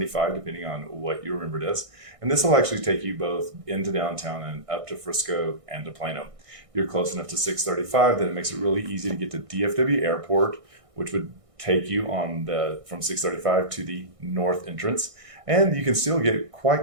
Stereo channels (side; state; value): left; late; 1.6 ms